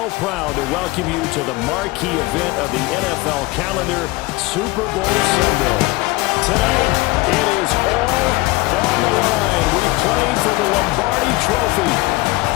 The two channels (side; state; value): right; quieter; 21.5 dB